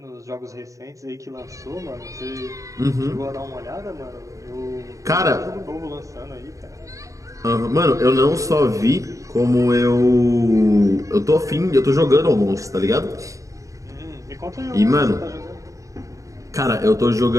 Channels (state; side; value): late; left; 0.16 ms